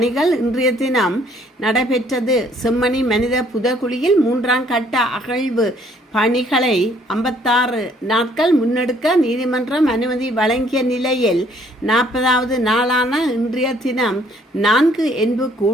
இன்றைய தினம் நடைபெற்றது. செம்மணி மனித புதைகுழியில் 3ஆம் கட்ட அகழ்வு பணிகளை 56 நாட்கள் முன்னெடுக்க நீதிமன்றம் அனுமதி வழங்கிய நிலையில் 40வது நாளான இன்றைய தினம் 4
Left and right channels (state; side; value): normal; both; correlation 0.63